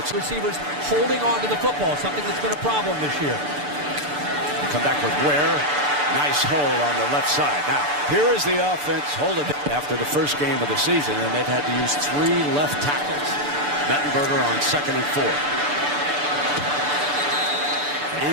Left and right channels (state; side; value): late; left; 6.8 ms